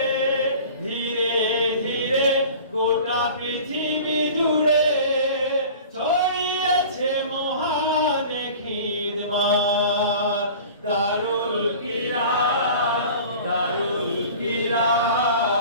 ধীরে ধীরে গোটা পৃথিবী জুড়ে ছড়িয়েছে মহান খিদমত দারুল কিরাত দারুল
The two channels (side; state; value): both; inverted; correlation -0.41